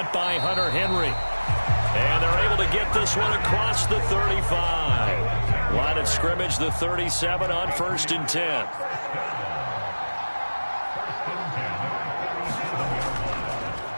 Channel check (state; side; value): inverted; both; correlation -1.00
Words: by Hunter Henry. And they're able to get this one across the 35. Line of scrimmage, the 37 on 1st and 10.